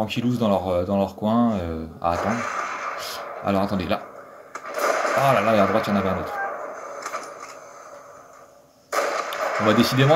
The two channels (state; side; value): identical; both; correlation 1.00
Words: dans leur coin à attendre. Alors attendez, là. Oh là là, et à droite, il y en avait un autre. Bon, bah,